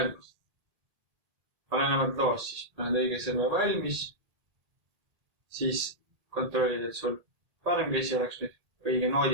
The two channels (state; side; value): late; left; 1.8 ms